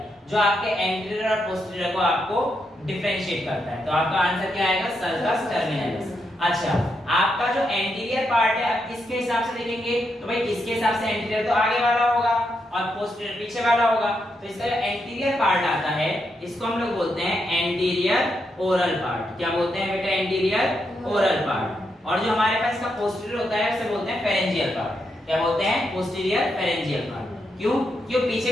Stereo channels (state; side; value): normal; both; correlation 0.82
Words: जो आपके एंटीरियर और पोस्टीरियर को आपको डिफरेंशिएट करता है। तो आपका आंसर क्या आएगा, सर्कस टर्मिनलिस। अच्छा, आपका जो एंटीरियर पार्ट है आप किसके हिसाब से देखेंगे तो भाई किसके हिसाब से, एंटीरियर तो आगे वाला होगा और पोस्टीरियर पीछे वाला होगा। तो इसका जो एंटीरियर पार्ट आता है इसको हम लोग बोलते हैं एंटीरियर ओरल पार्ट। क्या बोलते हैं बेटा, एंटीरियर ओरल पार्ट। और जो हमारे पास इसका पोस्टीरियर होता है उसे बोलते हैं फेरेंजियल पार्ट। क्या बोलते हैं, पोस्टीरियर फेरेंजियल पार्ट। क्यों, क्यों पीछे